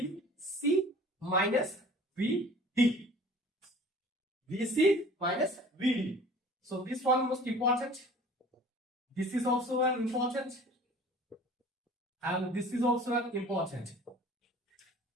minus VD. VC minus VD. So this one most important. This is also an important. And this is also an important.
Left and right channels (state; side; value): normal; both; correlation 0.46